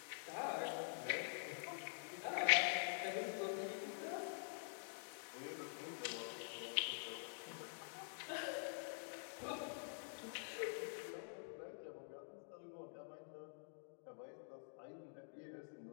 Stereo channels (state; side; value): silent; right; digital silence